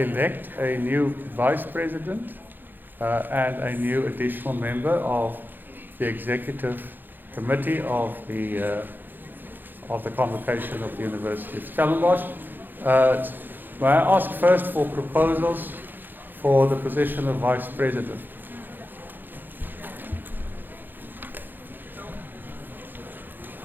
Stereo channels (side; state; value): left; late; 0.091 ms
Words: a new vice president and a new additional member of the executive committee of the Convocation of the University of Stellenbosch. May I ask first for proposals for the position of vice president?